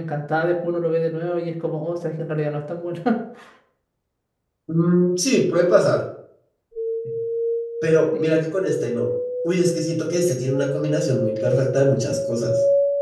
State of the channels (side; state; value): both; identical; correlation 1.00